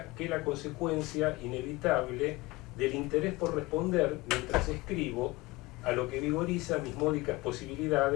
que la consecuencia inevitable del interés por responder mientras escribo a lo que vigoriza mis módicas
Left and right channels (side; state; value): right; quieter; 21.6 dB